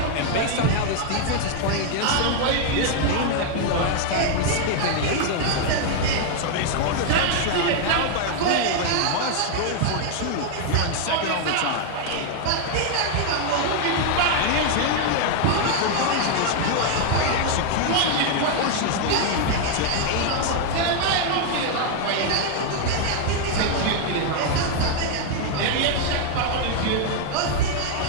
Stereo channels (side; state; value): both; different; correlation 0.00